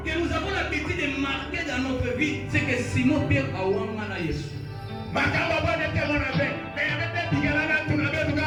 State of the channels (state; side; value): identical; both; correlation 1.00